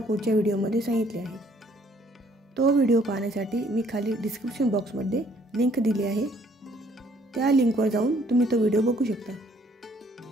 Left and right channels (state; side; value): normal; both; correlation 0.62